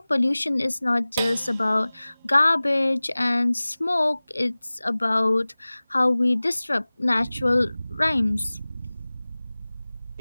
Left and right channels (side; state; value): both; inverted; correlation -0.99